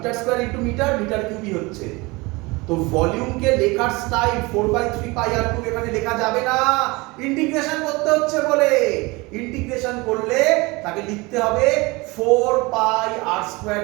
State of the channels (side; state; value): left; quieter; 24.3 dB